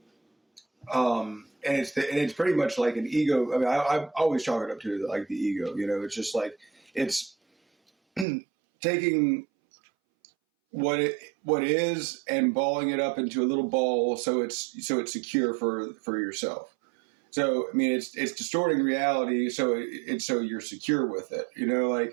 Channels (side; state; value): left; drops out; at 8.2 s